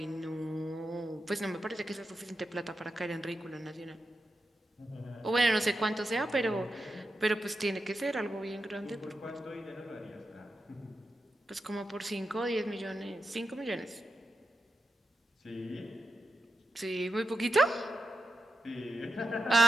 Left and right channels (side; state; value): both; normal; correlation 0.88